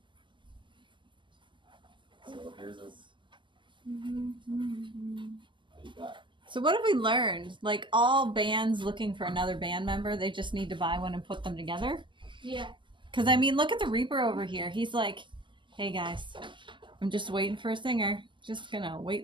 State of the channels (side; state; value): left; late; 0.23 ms